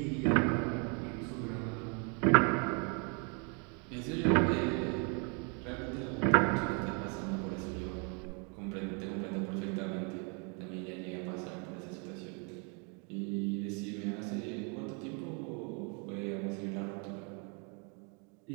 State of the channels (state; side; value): quieter; left; 35.5 dB